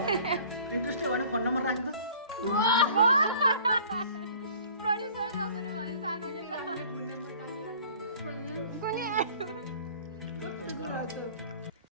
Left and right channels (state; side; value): inverted; both; correlation -0.50